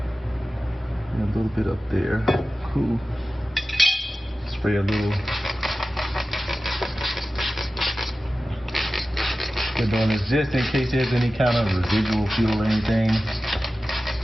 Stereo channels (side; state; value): both; normal; correlation 0.95